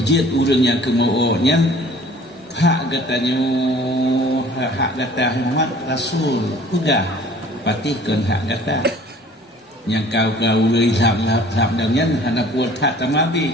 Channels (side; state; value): both; normal; correlation 0.51